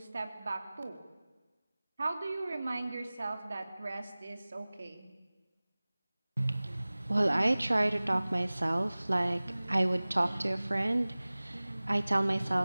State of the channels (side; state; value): both; inverted; correlation -0.99